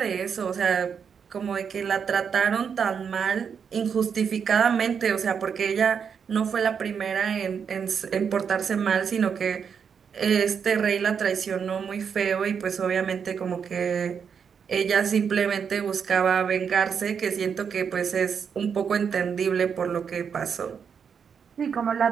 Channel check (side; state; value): left; quieter; 6.8 dB